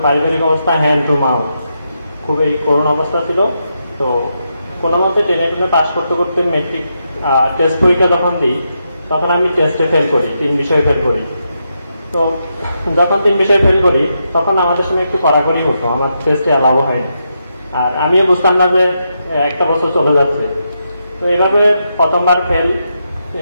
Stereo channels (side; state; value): both; inverted; correlation -0.83